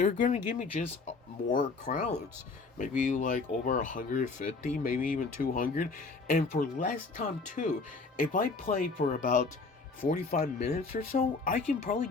gonna give me just more crowns. Maybe like over 150, maybe even 200, and for less time too. If I play for about 45 minutes or so, I can probably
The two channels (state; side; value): quieter; right; 4.1 dB